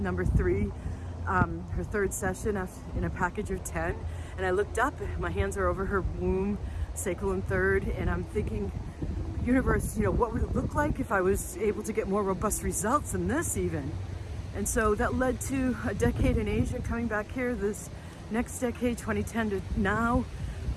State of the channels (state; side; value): identical; both; correlation 1.00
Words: 3, her 3rd session in a package of 10. And I looked up, my hands are over her womb, sacral and 3rd, and I'm thinking, universe, what would it look like if I was able to get more robust results than this even? And so that led to a decade in Asia, coming back here this next decade, 2010 to now,